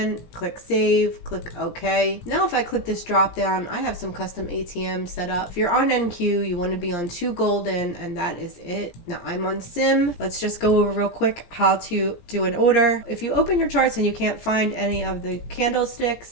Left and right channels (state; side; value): late; right; 17 ms